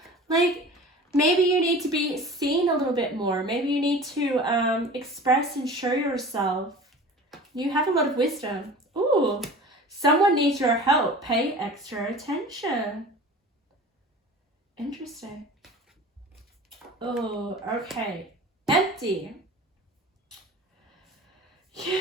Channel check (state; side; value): normal; both; correlation 0.39